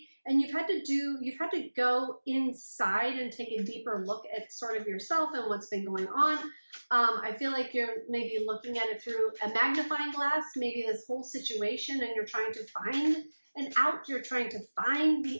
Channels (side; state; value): both; inverted; correlation -1.00